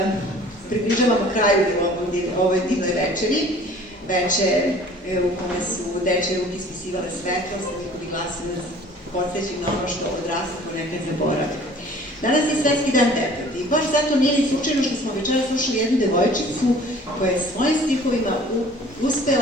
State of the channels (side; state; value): both; normal; correlation 0.50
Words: približavamo kraju ovoj divnoj večeri. Večer u kome su dečje ruke ispisivale svetlost, njihovi glasovi nas podsjećaju na ono što odrastamo nekad zaboravi. Danas je Svetski dan deteta i baš zato nije ni slučajno što smo večera slušali jednu devojčicu koja je svojim stihovima